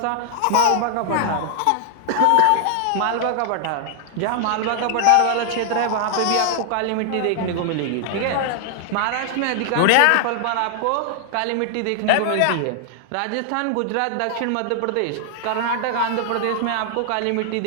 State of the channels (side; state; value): both; different; correlation 0.00